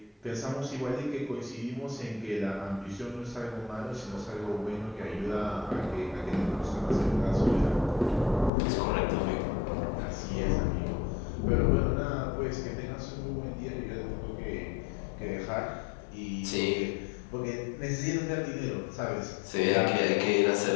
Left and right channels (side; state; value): right; drops out; at 8.5 s